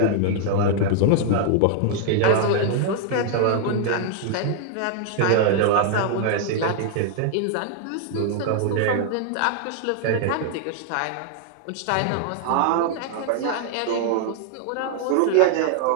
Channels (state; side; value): different; both; correlation 0.00